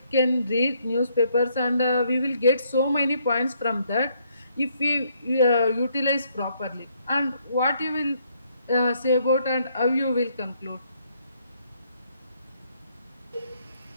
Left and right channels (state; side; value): inverted; both; correlation -0.71